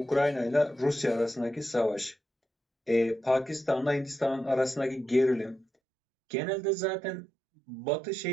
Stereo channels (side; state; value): left; drops out; at 5.7 s